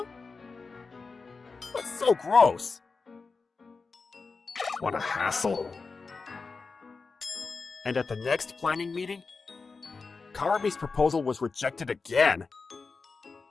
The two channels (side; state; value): right; quieter; 4.4 dB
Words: That's so gross. What a hassle. And at the next planning meeting, Karami's proposal was rejected again.